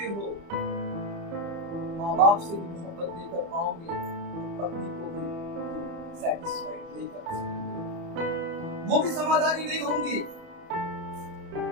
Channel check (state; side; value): late; left; 30 ms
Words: हो, माँ बाप से भी मोहब्बत नहीं कर पाओगे, पत्नी को भी सैटिस्फाइड नहीं कर सकोगे, वो भी समाधानी नहीं होंगी।